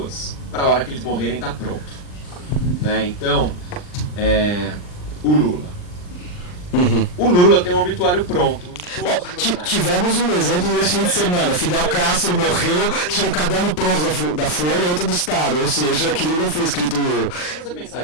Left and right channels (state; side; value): late; right; 39 ms